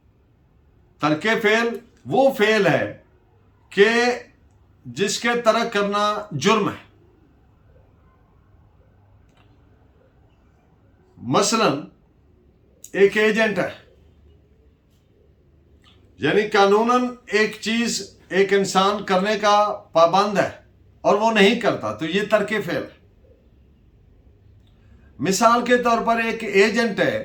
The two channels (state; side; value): identical; both; correlation 1.00